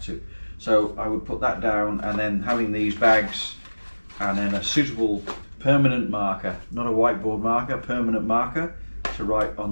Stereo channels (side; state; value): both; inverted; correlation -1.00